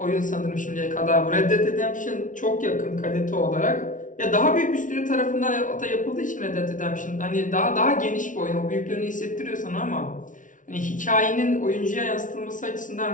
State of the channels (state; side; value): late; right; 0.38 ms